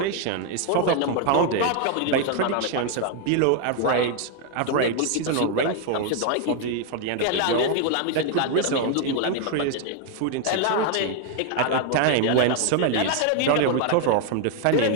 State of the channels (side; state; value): both; different; correlation 0.00